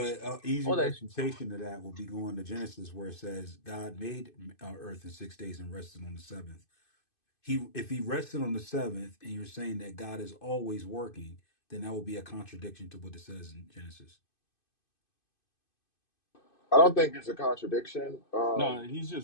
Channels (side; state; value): right; late; 2.5 ms